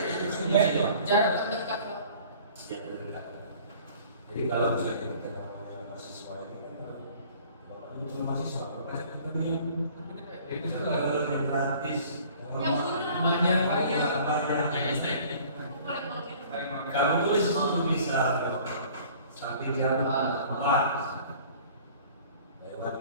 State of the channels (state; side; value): inverted; both; correlation -0.50